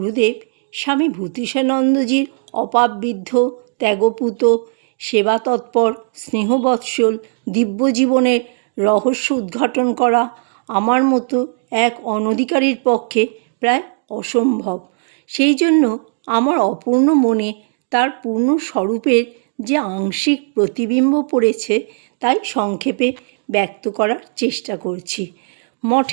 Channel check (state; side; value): silent; left; digital silence